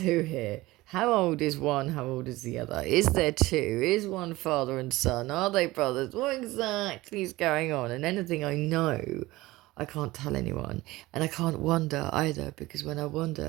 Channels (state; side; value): quieter; left; 19.1 dB